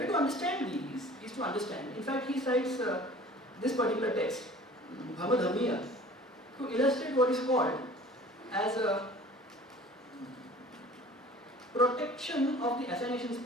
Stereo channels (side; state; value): both; normal; correlation 0.46